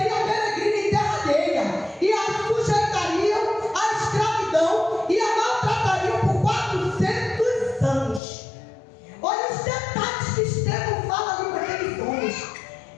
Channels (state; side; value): drops out; right; at 8.2 s